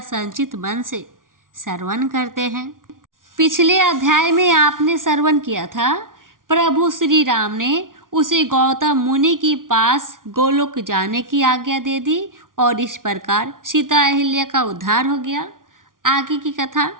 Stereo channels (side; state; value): left; late; 0.89 ms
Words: मन से श्रवण करते हैं। पिछले अध्याय में आपने श्रवण किया था, प्रभु श्री राम ने उसे गौतम मुनि के पास गोलोक जाने की आज्ञा दे दी और इस प्रकार सीता अहिल्या का उद्धार हो गया। आगे की कथा,